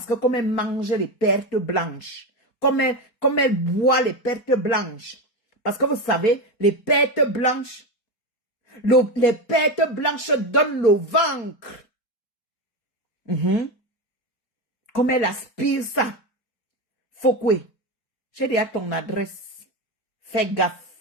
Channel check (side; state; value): right; late; 4.3 ms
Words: que comme elle mange les pertes blanches, comme elle boit les pertes blanches, parce que vous savez, les pertes blanches donnent le ventre. Comme elle aspire ça. Fokwe, j'ai déjà ton adresse. Fais